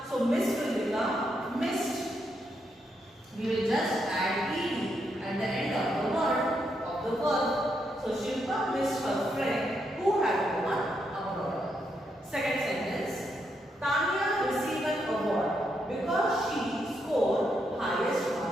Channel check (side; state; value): both; normal; correlation 0.80